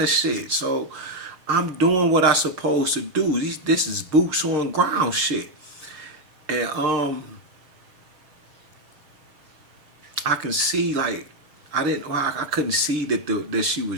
of shit. So I'm doing what I supposed to do. This is boots on ground shit. And I can see like I couldn't see that she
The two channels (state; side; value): late; left; 7.4 ms